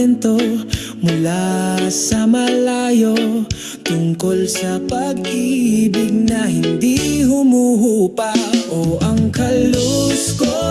mula sa malayo, tungkol sa pag-ibig na hindi humuhupa. O ang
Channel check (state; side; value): identical; both; correlation 1.00